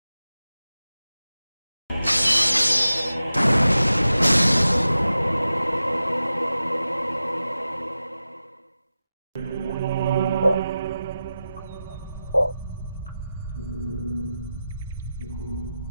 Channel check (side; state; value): both; inverted; correlation -0.93